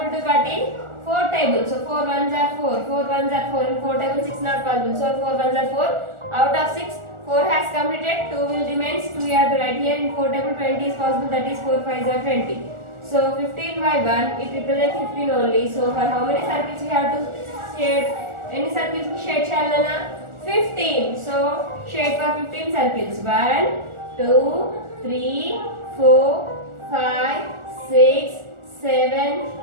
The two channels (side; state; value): left; late; 1.4 ms